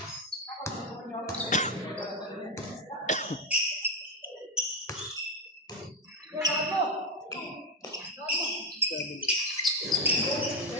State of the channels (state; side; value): normal; both; correlation 0.08